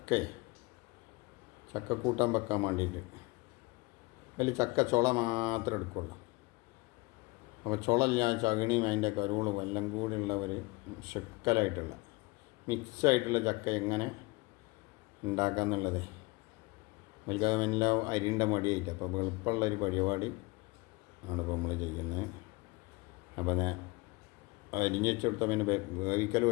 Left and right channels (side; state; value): right; quieter; 24.7 dB